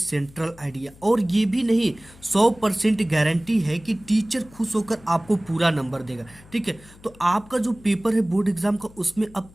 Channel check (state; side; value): noise; left; hum, 23 dB below the sound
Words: आइडिया। और ये भी नहीं, 100% गारंटी है कि टीचर खुश होकर आपको पूरा नंबर देगा। ठीक है, तो आपका जो पेपर है बोर्ड एग्जाम का, उसमें अब